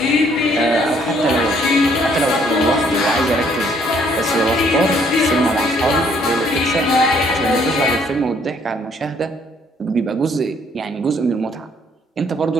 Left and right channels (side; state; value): both; normal; correlation 0.65